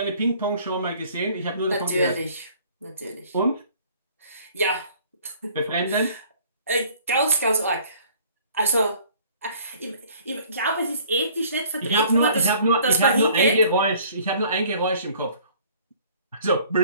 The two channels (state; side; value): inverted; both; correlation -0.54